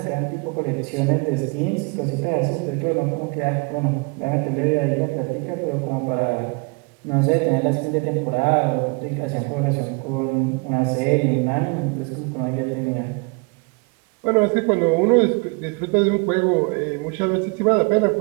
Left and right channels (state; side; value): quieter; left; 31.6 dB